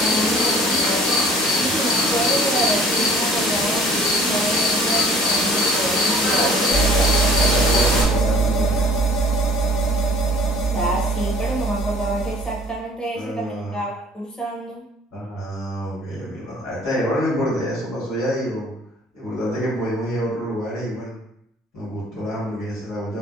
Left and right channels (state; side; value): normal; both; correlation 0.52